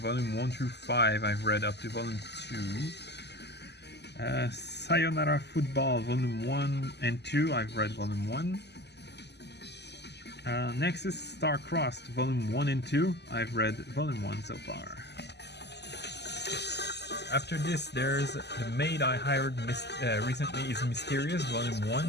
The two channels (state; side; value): late; right; 0.50 ms